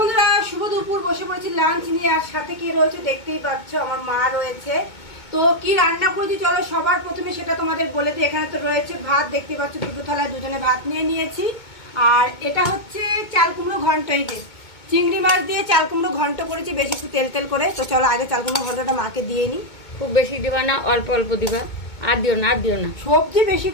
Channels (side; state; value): right; late; 2.2 ms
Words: শুভ দুপুর। বসে পড়েছি লাঞ্চ নিয়ে, আর সাথে কি রয়েছে দেখতেই পাচ্ছ, আমার মা রয়েছে। তো কি রান্না করেছি চলো সবার প্রথমে সেটা তোমাদের বলে দিই। এখানে তো রয়েছে ভাত, দেখতে পাচ্ছ দুটো থালায় দুজনে ভাত নিয়ে নিয়েছি। আর এটা হচ্ছে চাল কুমড়ো ঘন্ট, এই যে চিংড়ি মাছ দিয়ে চাল কুমড়ো ঘন্ট করেছি, বেশি একটু তেল তেল করে। তো চলো আগে চাল কুমড়ো ঘন্টটা মাকে দিয়ে নিই। খুব বেশি দিবা না, অল্প অল্প দিবা, আর দিও না, আর দিও না। সবজি বেশি